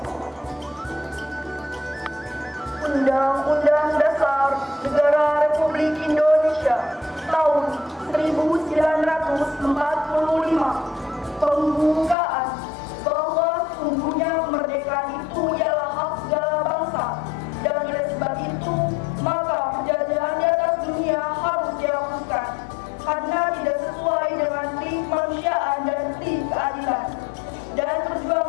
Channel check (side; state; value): right; drops out; at 12.2 s